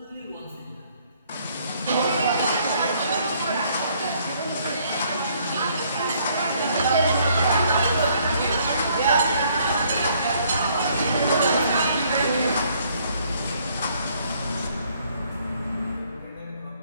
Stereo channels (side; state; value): both; inverted; correlation -0.65